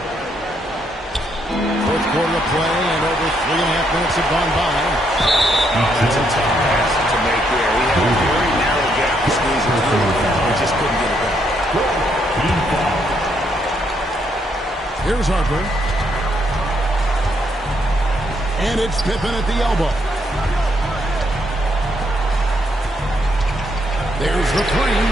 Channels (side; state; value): both; normal; correlation 0.74